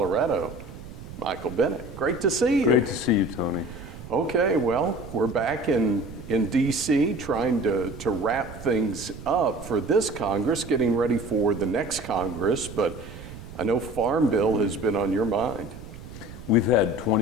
Michael Bennet. Great to see you. Great to see you, Tony. Okay, well, we're back in DC trying to wrap things up for this Congress, getting ready for the next Congress, but I know Farm Bill has been on your mind. We've had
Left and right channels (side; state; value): right; noise; rumble, 14 dB below the sound